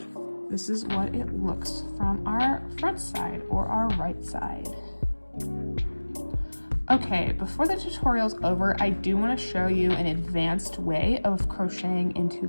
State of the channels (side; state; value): both; inverted; correlation -1.00